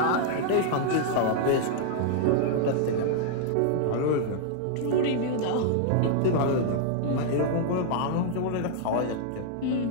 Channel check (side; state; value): both; different; correlation -0.01